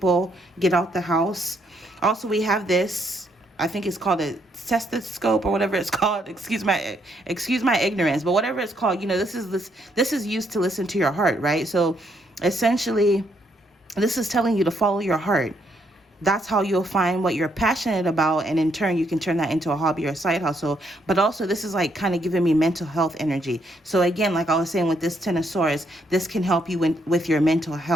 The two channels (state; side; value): normal; both; correlation 0.73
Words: get out the house. Also, we have this, I think it's called a stethoscope or whatever it's called. Excuse my ignorance, but whatever it's called, you know, this is used to listen to your heart, right? So essentially, this is telling you to follow your heart. That's how you'll find what you're passionate about, and in turn you can turn that into a hobby or a side hustle. But also, this is like kind of giving me mental health energy. So again, like I was saying with this Ten of Swords, this can help you with your mental